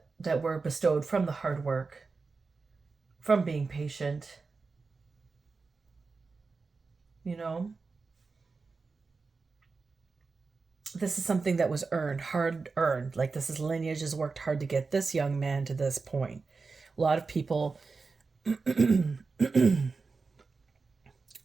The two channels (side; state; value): left; quieter; 4.3 dB